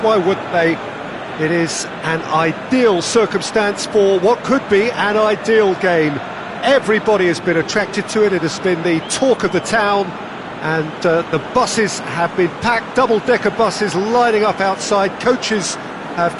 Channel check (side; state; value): both; identical; correlation 1.00